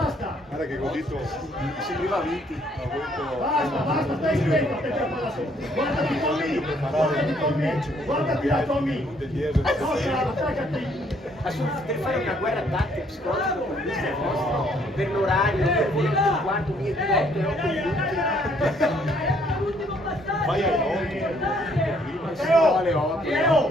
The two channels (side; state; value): both; normal; correlation 0.66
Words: Guarda che così Mi sembrava vinti. Basta, basta, stai stretto a te per palla su! Guardati Tommy! Guardati Tommy! Guardati da Tommy! Forza, attaccati! Per fare una guerra tattica psicologica con queste vostre, per l'orario, per voi 8 e quarto, 1 e 8 Vai alle 8. Matteo!